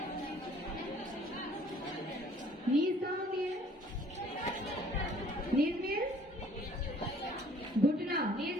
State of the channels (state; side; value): normal; both; correlation 0.56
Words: Knees कहाँ होती है? नीज मीन्स घुटना, नीज